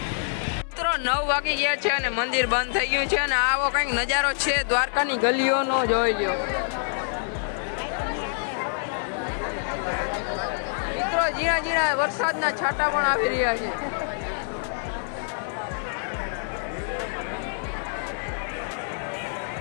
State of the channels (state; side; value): silent; right; 57 dB below the other